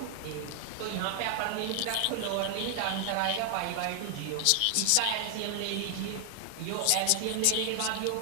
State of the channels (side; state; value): both; different; correlation 0.00